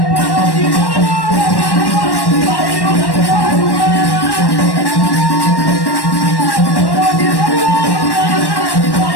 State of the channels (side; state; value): right; late; 1.1 ms